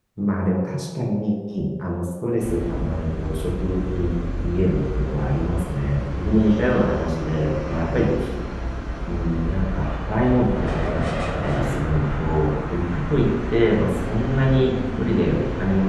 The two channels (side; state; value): both; identical; correlation 1.00